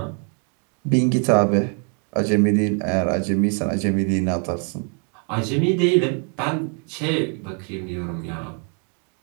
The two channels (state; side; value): quieter; left; 39.7 dB